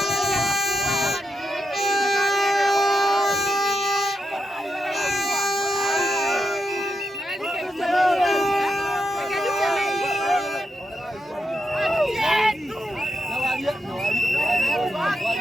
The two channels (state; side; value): normal; both; correlation 0.85